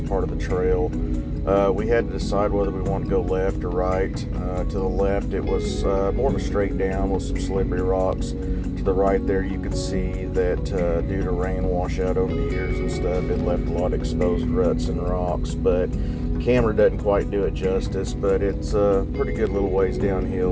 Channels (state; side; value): identical; both; correlation 1.00